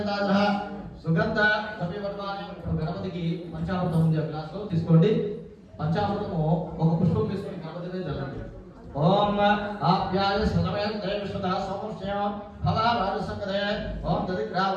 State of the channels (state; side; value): identical; both; correlation 1.00